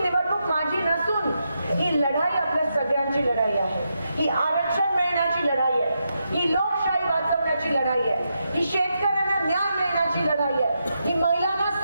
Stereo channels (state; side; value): inverted; both; correlation -0.84